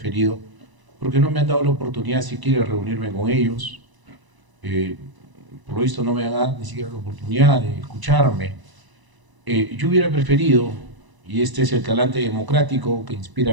porque no me han dado la oportunidad siquiera de reunirme con ellos. Por lo visto no me han dado ni siquiera la oportunidad de escucharme. Yo hubiera preferido, y este es el talante democrático que inspira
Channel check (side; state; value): left; late; 1.0 ms